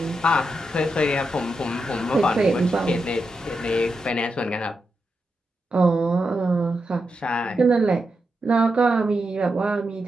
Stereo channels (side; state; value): both; normal; correlation 0.86